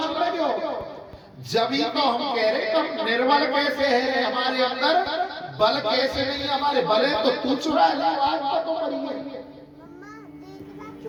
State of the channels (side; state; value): both; identical; correlation 1.00